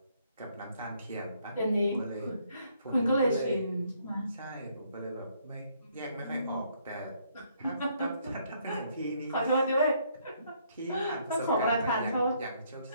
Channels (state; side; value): inverted; both; correlation -0.69